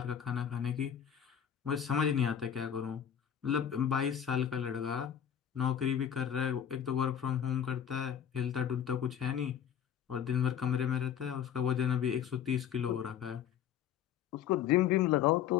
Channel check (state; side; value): quieter; right; 9.1 dB